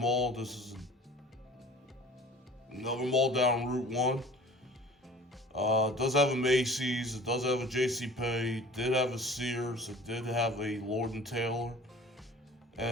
This is another mall down Route 1. It does have a Macy's, it does have a JCPenney, it did have a Sears, it did have a Lord and Taylor.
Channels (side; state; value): both; normal; correlation 0.45